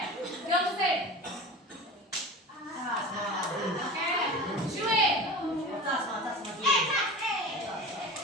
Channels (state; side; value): normal; both; correlation 0.33